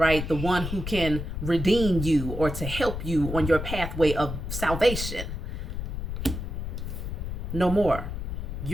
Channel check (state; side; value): noise; left; rumble, 5 dB below the sound